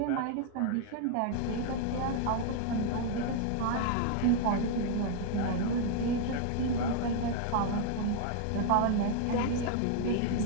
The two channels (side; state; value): both; different; correlation 0.00